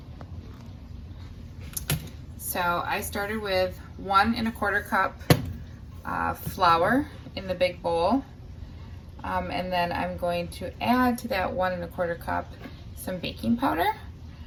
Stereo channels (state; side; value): identical; both; correlation 1.00